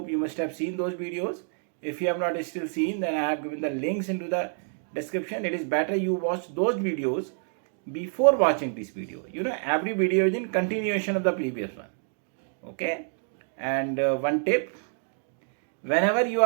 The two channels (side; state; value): left; silent; 60 dB below the other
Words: you must have seen those videos. If you have not still seen, then I have given the links into the description. It is better you watch those videos before watching this video. You know, every video is in continuation of the previous one. Okay, and one tip, whenever you